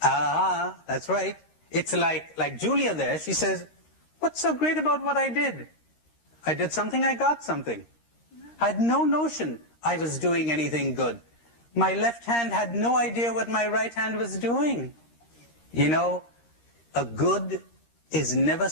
right. It's like Julia there. She says, what's so great about what I did? I did something, I got something. I had no notion I was doing anything good. My left hand had no idea what my right hand was doing. You know, a good is never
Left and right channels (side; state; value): right; late; 13 ms